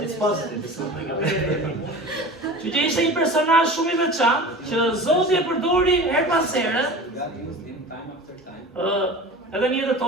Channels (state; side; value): normal; both; correlation 0.36